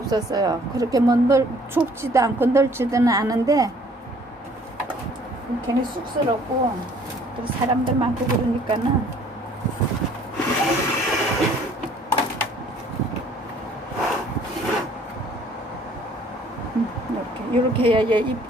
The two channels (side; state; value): both; normal; correlation 0.57